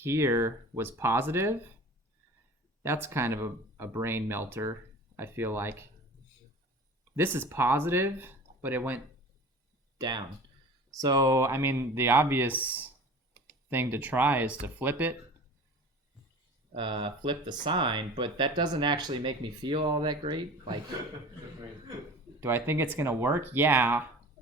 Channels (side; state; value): both; normal; correlation 0.40